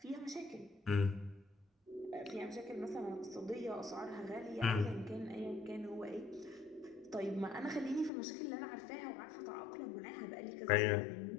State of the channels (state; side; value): drops out; right; at 8.1 s